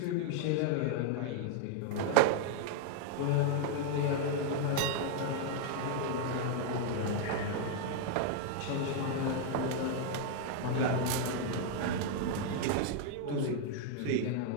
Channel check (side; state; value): both; different; correlation 0.00